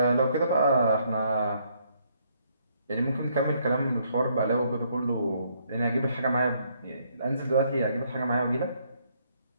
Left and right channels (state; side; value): inverted; both; correlation -0.70